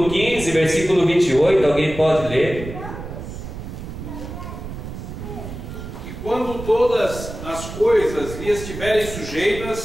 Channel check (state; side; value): noise; right; rumble, 9 dB below the sound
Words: 15, versículo 28, alguém pode ler? E quando todas as coisas lhe estiverem